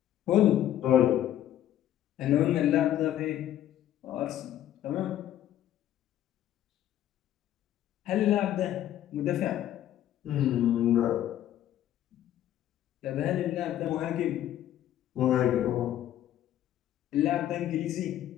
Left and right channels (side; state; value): right; quieter; 12.0 dB